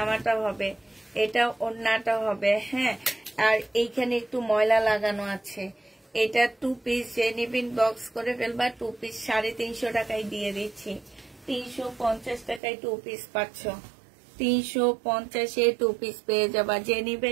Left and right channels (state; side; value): drops out; left; at 12.6 s